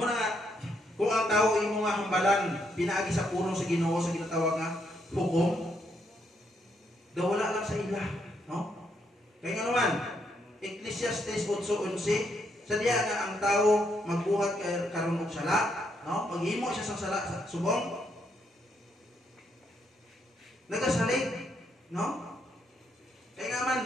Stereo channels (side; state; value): both; normal; correlation 0.76